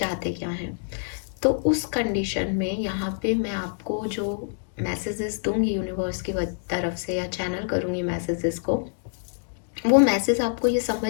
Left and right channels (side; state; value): right; silent; digital silence